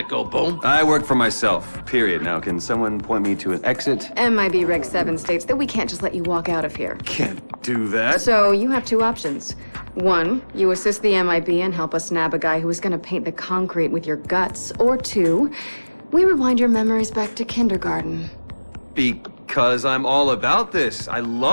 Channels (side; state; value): both; inverted; correlation -1.00